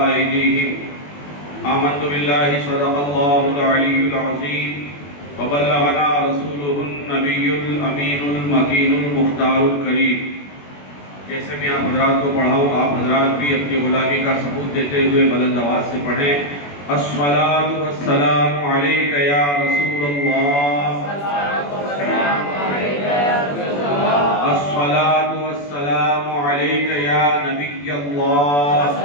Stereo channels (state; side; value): late; right; 21 ms